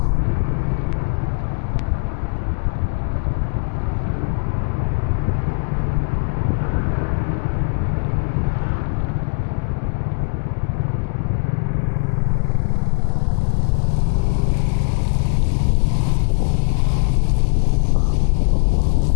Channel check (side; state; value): right; silent; digital silence